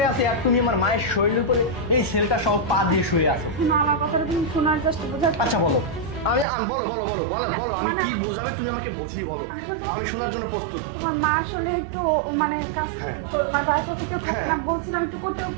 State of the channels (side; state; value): left; drops out; at 6.5 s